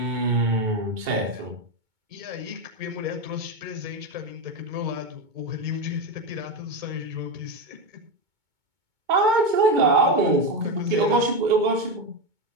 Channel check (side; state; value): left; late; 2.2 ms